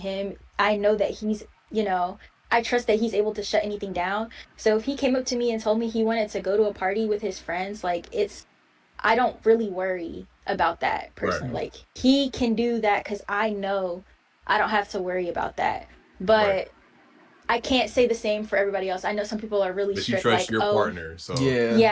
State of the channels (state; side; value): identical; both; correlation 1.00